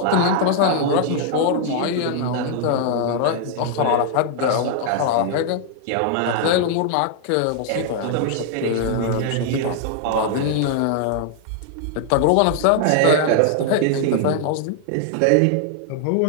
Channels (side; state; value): both; different; correlation 0.00